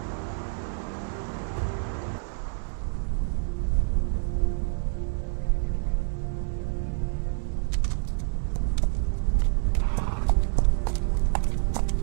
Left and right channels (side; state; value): left; silent; 60 dB below the other